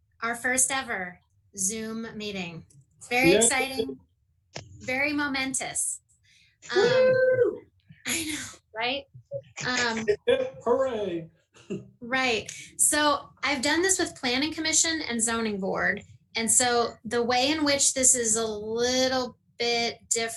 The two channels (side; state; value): both; identical; correlation 1.00